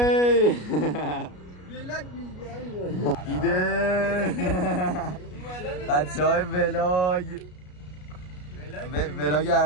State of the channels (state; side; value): late; right; 33 ms